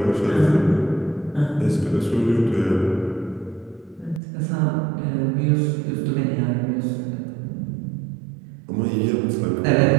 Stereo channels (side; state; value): left; drops out; at 4.2 s